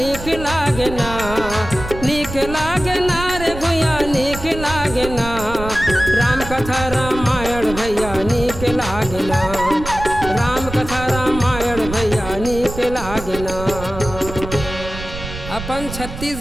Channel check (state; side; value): noise; right; rumble, 10 dB below the sound